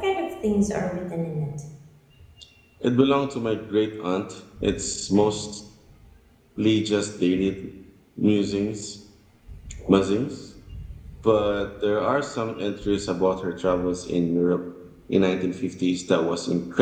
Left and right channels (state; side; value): identical; both; correlation 1.00